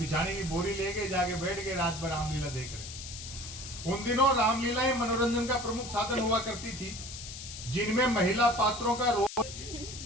की बोरी लेके जाके बैठ के रात भर रामलीला देख रहे। उन दिनों रामलीलाएं मनोरंजन का प्रमुख साधन हुआ करती थी, जिनमें महिला पात्रों का रोल,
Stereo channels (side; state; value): left; noise; hiss, 10 dB below the sound